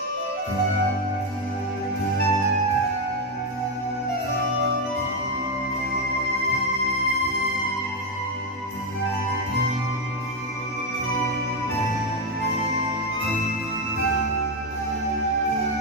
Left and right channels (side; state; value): both; normal; correlation 0.08